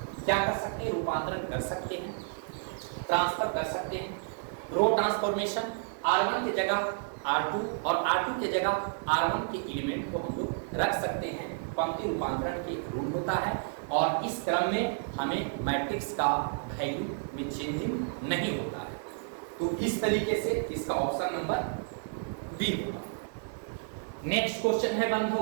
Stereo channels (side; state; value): left; silent; digital silence